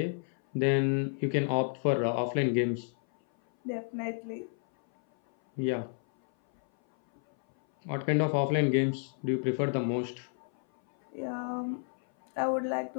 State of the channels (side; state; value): right; silent; 57 dB below the other